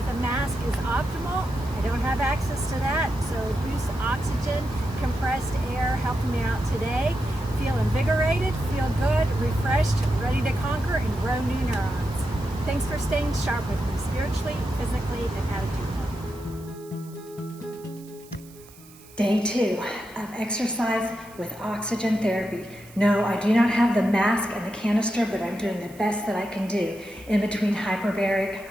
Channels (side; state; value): right; noise; hiss, 23 dB below the sound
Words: a mask is optimal. I don't have access to that, so boost oxygen, compressed air helping me out today. Feel invigorated, feel good, refreshed, ready to conquer and grow new neurons. Thanks for staying sharp with me spiritually, physically, and attitudinally. Day 2 of exercise with oxygen therapy. No, I do not have the mask and the canister, but I'm doing the best that I can do in between hyperbaric